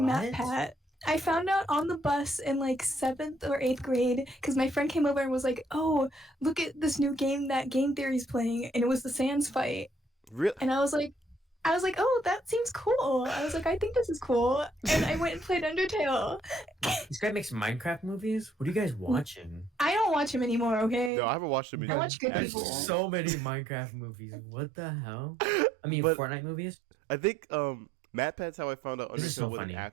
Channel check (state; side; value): drops out; left; at 21.1 s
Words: What? MatPat. I found out on the bus in like 7th or 8th grade because my friend came over and was like, "Oh, look at this new game that Game Theory's playing," and it was the Sans fight. Really? And I was like, "Oh, that seems cool." I was like, "I think this is cool," and I went and played Undertale. This guy makes Minecraft movies? What are you guys watching? I don't watch him anymore. Okay. No, I haven't watched him I in watch good There's people. so many Minecraft movies. What the hell? I mean, But Fortnite movies? I think MatPat's how I found out This is Undertale so was an funny.